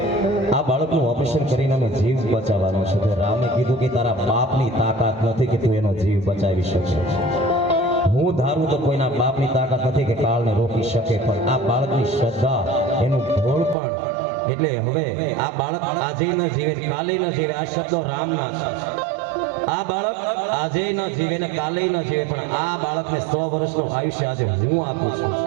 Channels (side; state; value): left; drops out; at 13.8 s